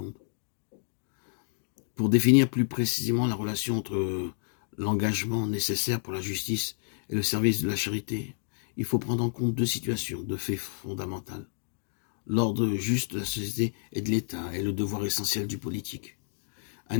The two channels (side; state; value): right; silent; digital silence